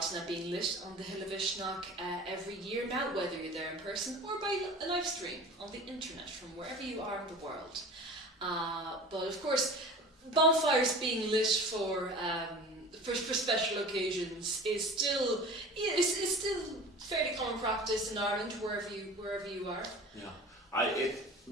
being lit on the Hill of Ishnock every year now, whether you're there in person or by a live stream on the internet from wherever you are in the world. But of course, bonfires being lit for special occasions is still fairly common practice in Ireland wherever you are. Yeah,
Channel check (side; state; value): both; normal; correlation 0.39